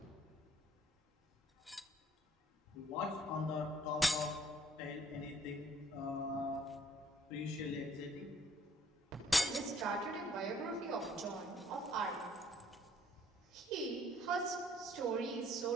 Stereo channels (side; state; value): both; normal; correlation 0.61